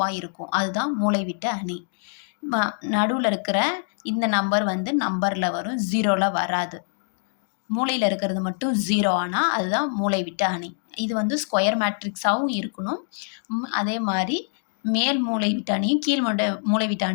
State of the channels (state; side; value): silent; right; digital silence